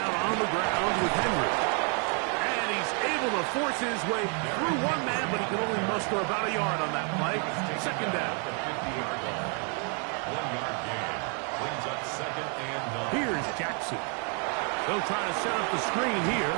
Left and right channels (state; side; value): quieter; left; 39.4 dB